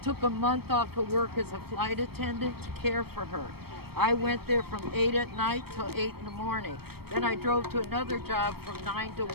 Took a month off of work as a flight attendant to care for her. I went there from 8 at night till 8 in the morning. Then I drove to another job from 9 to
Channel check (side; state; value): left; late; 0.96 ms